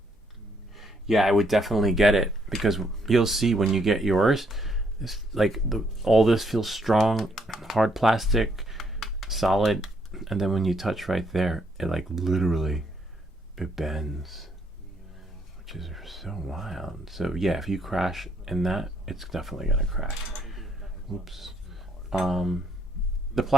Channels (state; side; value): normal; both; correlation 0.71